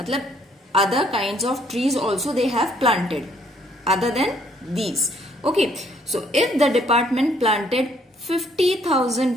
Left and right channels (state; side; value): normal; both; correlation 0.65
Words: other kinds of trees also they have planted other than these. Okay, so if the department planted